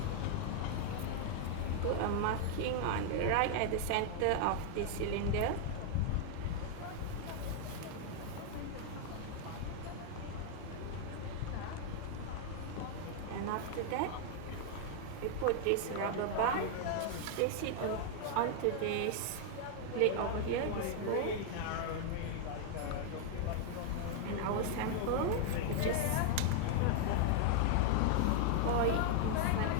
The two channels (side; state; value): both; different; correlation 0.00